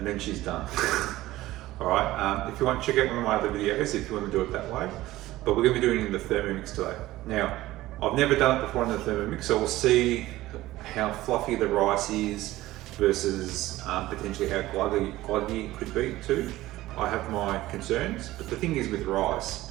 then she's done. Alright, if you want to check out one of my other videos if you want to do it that way, but we're going to be doing it in the Thermomix today. Now, I've never done it before in the Thermomix, so we'll see how fluffy the rice is versus potentially how gluggy it could be too. I have my concerns, but the thing is with rice,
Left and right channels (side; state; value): left; quieter; 16.6 dB